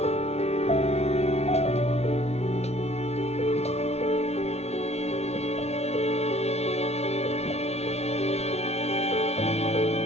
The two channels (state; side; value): late; right; 0.31 ms